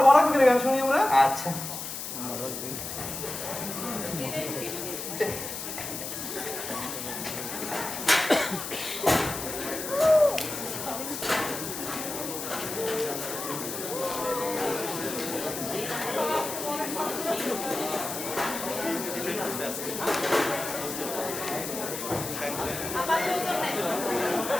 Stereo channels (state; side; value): noise; left; hiss, 6 dB below the sound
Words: বড় চোখের গান শুনি আমরা। আচ্ছা